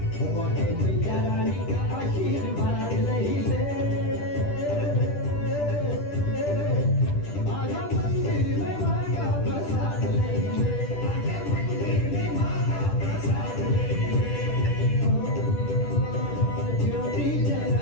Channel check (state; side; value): late; right; 10 ms